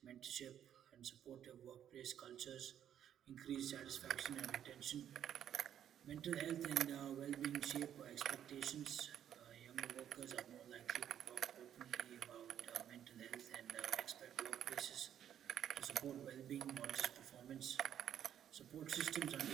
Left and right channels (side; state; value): left; quieter; 10.0 dB